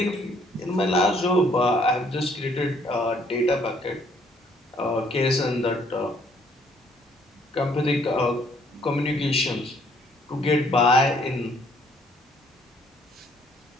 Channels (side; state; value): both; normal; correlation 0.65